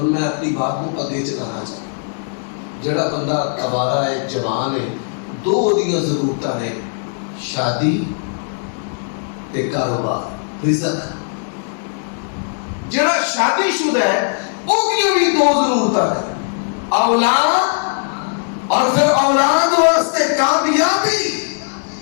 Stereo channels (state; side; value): silent; right; digital silence